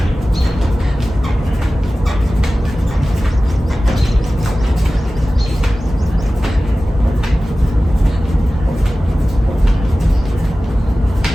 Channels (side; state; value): both; normal; correlation 0.96